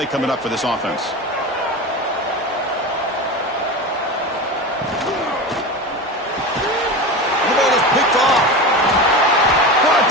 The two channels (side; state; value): both; normal; correlation 0.26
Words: coming up for this offense. The ball is picked off. Brought